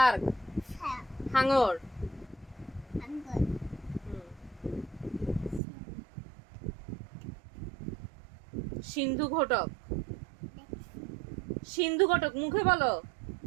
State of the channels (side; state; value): left; drops out; at 5.6 s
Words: হ্যাঁ, হাঙর। আঙ্গুর। সিন্ধু ঘটক। দেখছি। সিন্ধু ঘটক মুখে বলো।